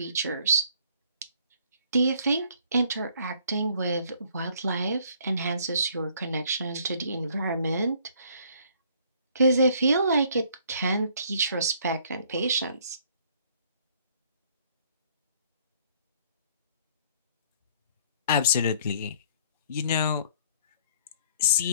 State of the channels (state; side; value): inverted; both; correlation -0.60